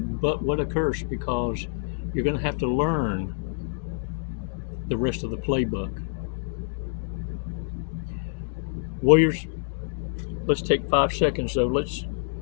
but what a curse, because you're going to have to learn the rest of the playbook. Warriors, let's take 5 seconds though. Let's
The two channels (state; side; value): silent; right; digital silence